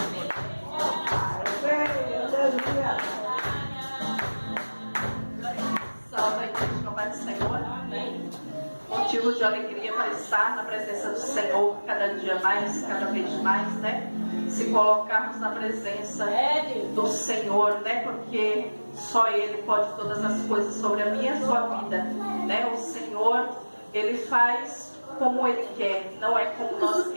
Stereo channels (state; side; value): inverted; both; correlation -1.00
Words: Aleluia. Salve a igreja com a paz do Senhor. Amém. Motivo de alegria para estar na presença do Senhor cada dia mais, cada vez mais, né? Se colocarmos na presença do Senhor, né? Porque só Ele pode todas as coisas sobre a minha e a sua vida, né? O Senhor, Ele faz como Ele quer, não é como nós